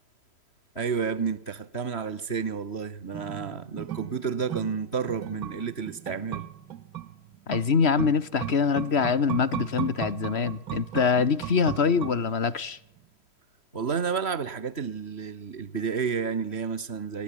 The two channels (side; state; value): right; late; 3.1 ms